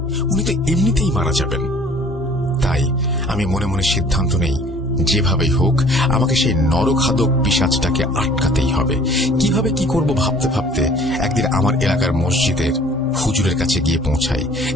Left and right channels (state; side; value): normal; both; correlation 0.53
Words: উনি তো এমনিতেই মারা যাবেন। তাই আমি মনে মনে সিদ্ধান্ত নেই যেভাবেই হোক আমাকে সেই নরখাদক পিশাচটাকে আটকাতেই হবে। কিভাবে কি করব ভাবতে ভাবতে একদিন আমার এলাকার মসজিদের হুজুরের কাছে গিয়ে পৌঁছাই,